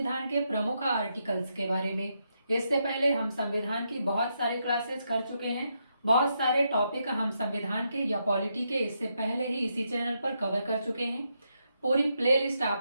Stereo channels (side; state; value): both; inverted; correlation -0.81